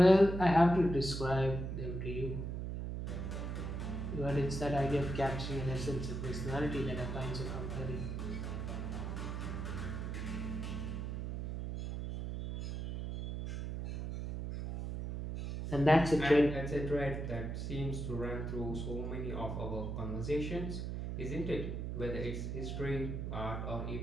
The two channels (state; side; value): noise; right; hum, 4 dB below the sound